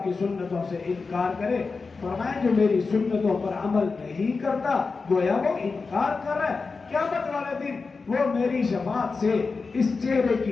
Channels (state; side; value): quieter; right; 4.4 dB